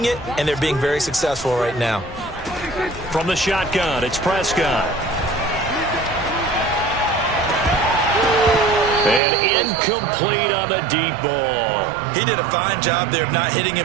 it, and they're being very successful right now. From the shotgun, it's Prescott. And incomplete on the deep ball. He did a fine job there of not hitting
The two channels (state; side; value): drops out; left; at 9.2 s